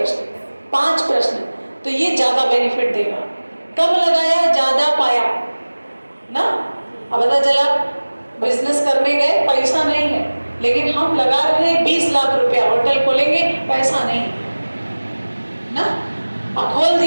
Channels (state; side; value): inverted; both; correlation -1.00